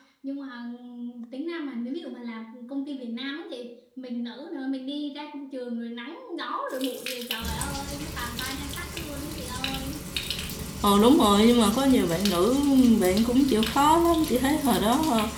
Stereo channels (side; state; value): both; identical; correlation 1.00